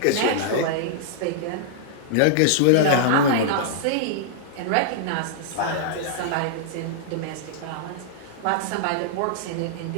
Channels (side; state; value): both; different; correlation -0.01